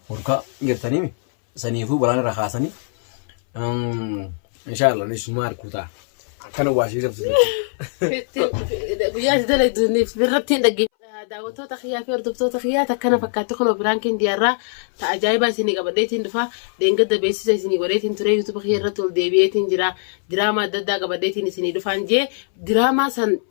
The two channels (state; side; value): silent; right; 62 dB below the other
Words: hurkaa jirtanii saniifuu balaan irraa kaasanii inshallah ni suma arkuta kana waashii sabsiisu. Guyyaa dalagduuniif birratti hin dhaggeeffamu. Daawwattoota kiyyaa fi hordoftoota kiyyaa takkana fakkaatti kun piraankiin diyaarraa ta'a ajaa'ibaa isinii qabadheetiin dhufa deengada beeksisa isinii godheetiin ture yuutuuba kiyya irratti ol deebi'eetiin jira diraamaa adda addaa qabadheetiin isinii dhufaan jee diraamaa san